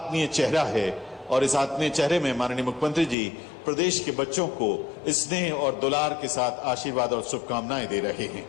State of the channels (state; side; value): drops out; right; at 3.2 s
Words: चेहरा है और इस आत्मीय चेहरे में माननीय मुख्यमंत्री जी प्रदेश के बच्चों को स्नेह और दुलार के साथ आशीर्वाद और शुभकामनाएं दे रहे हैं।